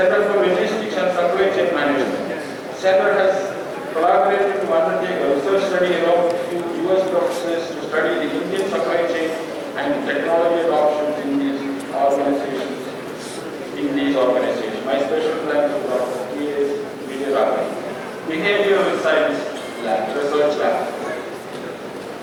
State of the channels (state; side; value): identical; both; correlation 1.00